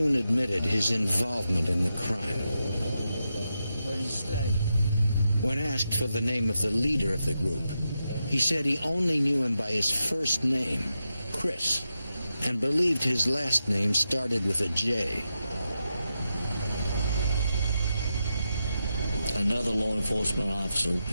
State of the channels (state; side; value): inverted; both; correlation -0.87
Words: admitted his involvement in the crime. When asked for the name of the leader of the group, he said he only knew him by his first name, Chris, and believed his last name started with a J. Another law enforcement officer